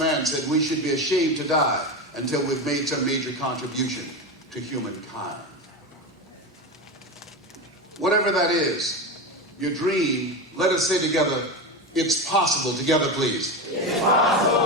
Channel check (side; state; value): both; normal; correlation 0.20